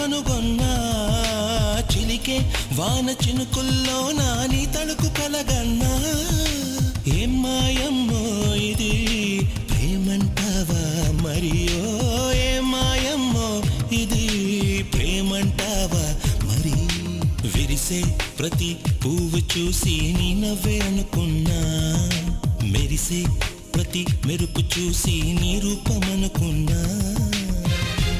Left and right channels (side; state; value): both; identical; correlation 1.00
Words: చిలికే వాన చినుకుల్లోనా నీ తళుకు కలగన్నా. ఏం మాయమ్మో ఇది ప్రేమంటావా మరియో, ఏం మాయమ్మో ఇది ప్రేమంటావా మరి. విరిసే ప్రతి పువ్వు చూసి నీ నవ్వే అనుకున్నా, మెరిసే ప్రతి మెరుపు చూసి నీ రూపమనుకున్నా.